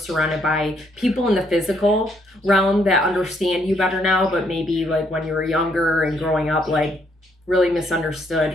by people in the physical realm that understand you better now, but maybe like when you were younger and growing up, like really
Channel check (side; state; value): both; normal; correlation 0.71